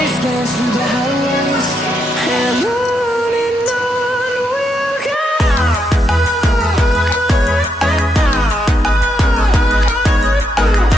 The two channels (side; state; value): both; normal; correlation 0.80